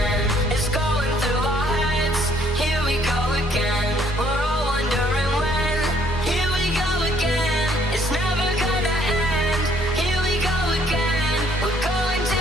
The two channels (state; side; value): normal; both; correlation 0.64